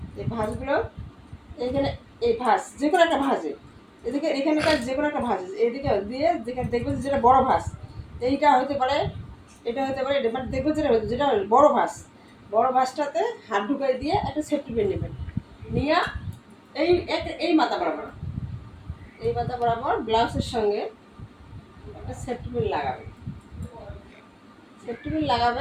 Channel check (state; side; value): identical; both; correlation 1.00